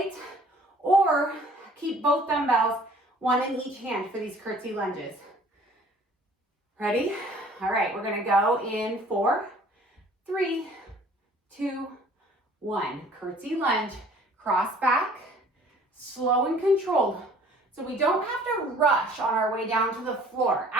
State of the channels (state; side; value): normal; both; correlation 0.53